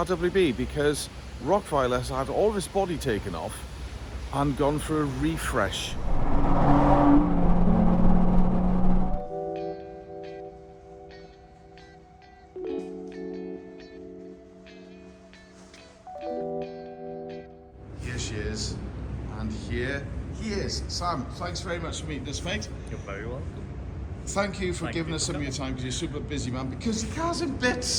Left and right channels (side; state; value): both; identical; correlation 1.00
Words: because Rokweiler has had all of its body taken off and gone for a refresh. Here she is, and here he is. Sam, thanks very much for meeting us, mate. You're very welcome. Thank you for giving us some of your time because you're super busy, man. Because the car's in